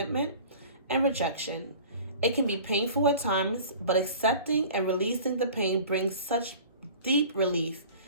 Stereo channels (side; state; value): both; inverted; correlation -0.43